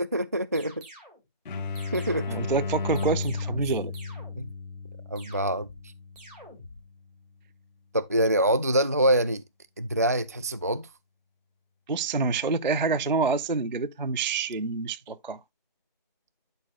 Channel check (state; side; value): inverted; both; correlation -0.37